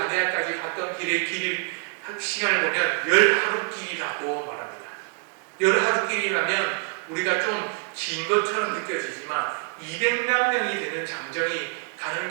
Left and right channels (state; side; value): quieter; left; 37.0 dB